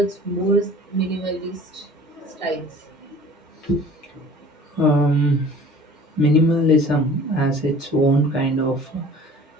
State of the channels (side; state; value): both; normal; correlation 0.47